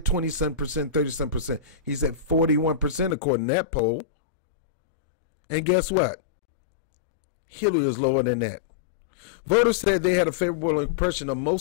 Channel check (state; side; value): drops out; right; at 3.2 s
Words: 27%, 37%. He's at 41% according to that poll. And guess what? Hillary is lower than that. Voters said they had a favorable impression of